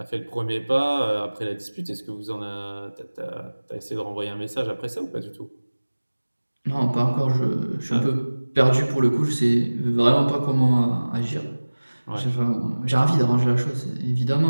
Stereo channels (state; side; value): inverted; both; correlation -1.00